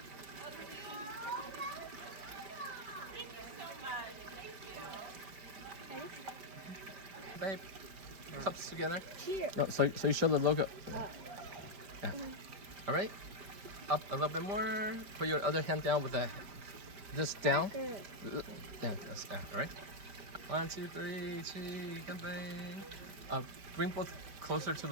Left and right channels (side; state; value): left; late; 5.1 ms